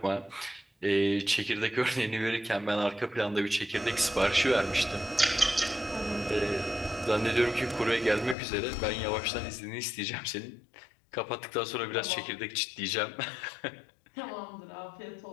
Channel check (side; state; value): right; drops out; at 8.3 s